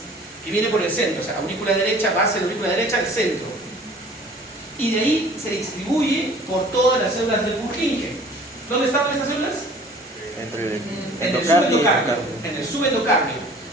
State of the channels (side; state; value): both; normal; correlation 0.49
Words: que viene por el centro, o sea, aurícula derecha, base de la aurícula derecha, el centro. Y de ahí se distribuye por todas las células del Purkinje. ¿Dónde estaban estas células? En el subendocardio.